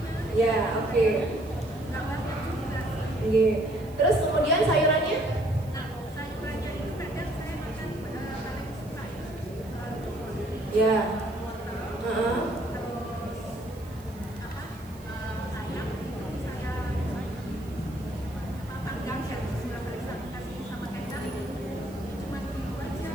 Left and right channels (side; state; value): right; noise; hiss, 24 dB below the sound